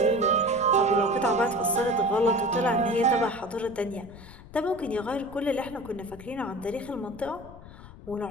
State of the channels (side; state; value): left; noise; rumble, 18 dB below the sound